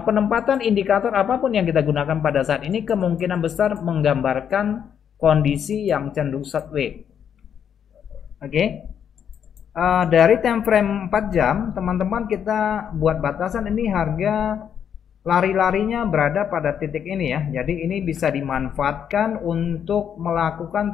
indikator apapun yang kita gunakan pada saat ini kemungkinan besar menggambarkan kondisi yang cenderung sideways. Oke. Dari time frame 4 jam, teman-teman kita buat batasan ini harga lari-larinya berada pada titik ini ya. Jadi ini bisa dimanfaatkan untuk melakukan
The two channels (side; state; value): right; quieter; 8.4 dB